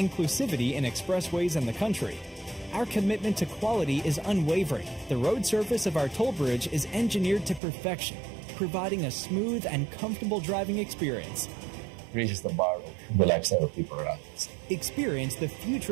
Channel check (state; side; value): drops out; left; at 7.6 s